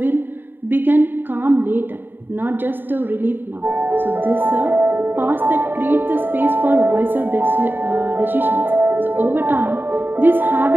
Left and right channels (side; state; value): left; late; 0.094 ms